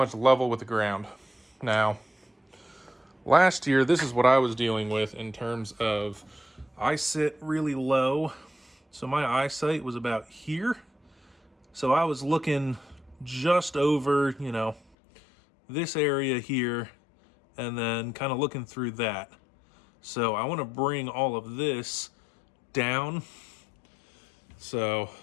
level with the ground. Now, last year, this is what I was dealing with in terms of, I sit really low, so my eyesight was about here. So I was looking just over, you know, this area here, and then kind of looking through that. So I want to bring all of this down. So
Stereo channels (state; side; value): drops out; right; at 14.8 s